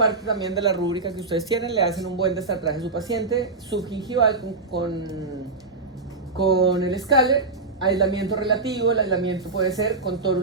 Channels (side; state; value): left; quieter; 3.7 dB